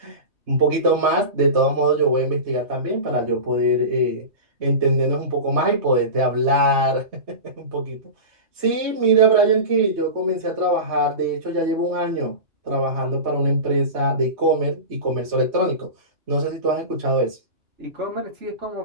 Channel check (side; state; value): left; late; 3.2 ms